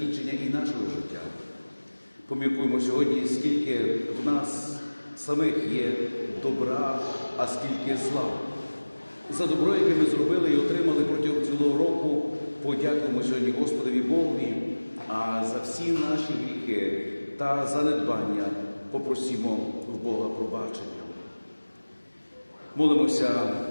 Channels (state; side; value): inverted; both; correlation -1.00